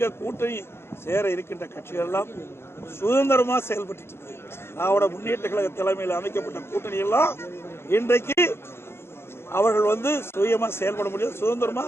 கூட்டணி சேர இருக்கின்ற கட்சிகள் எல்லாம் சுதந்திரமா செயல்பட்டு இருக்கு. திராவிட முன்னேற்ற கழக தலைமையில் அமைக்கப்பட்ட கூட்டணி எல்லாம் இன்றைக்கு அவர்கள் சுயமா செயல்பட முடியல, சுதந்திரமா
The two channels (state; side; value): late; right; 0.12 ms